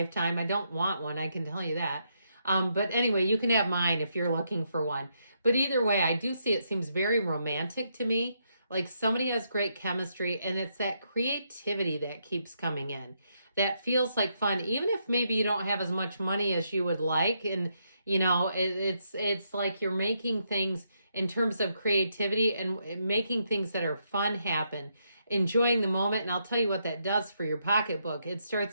I don't want one, I can tell you that. But anyway, you can have mine if you're looking for one. But either way, I do see it seems very romantic to me. Like somebody has great chemistry, and it's that creativity that keeps coming in. That feels like fun, even if maybe you don't have as much money as you would like. And it's like you're making things in terms of creativity and making things that are fun happen, enjoying the moment. And I'll tell you what that does for your pocketbook. It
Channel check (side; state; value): both; inverted; correlation -0.78